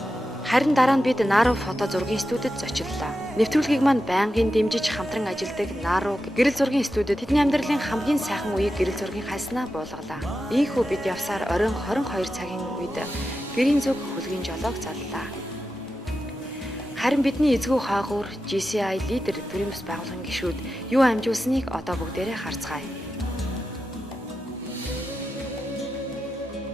Харин дараа нь бид Нару фото зургийн студид зочлоо. Нэвтрүүлгийг маань байнгын дэмжиж хамтран ажилладаг Нару гэрэл зургийн студид тэдний амьдралын хамгийн сайхан үеийг гэрэл зургийн хайснаа буулгалаа. Ийхүү бид явсаар оройн 22 цагийн үед гэрийн зүг хөлгийн жолоог заллаа. Харин бидний эзгүй хаагуур GCI лидер төрийн бас байгууллагын гишүүд юу амжуулсныг одоо бүгдээрээ харцгаая.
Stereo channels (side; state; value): both; normal; correlation 0.90